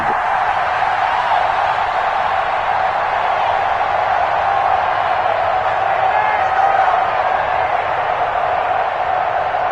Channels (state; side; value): identical; both; correlation 1.00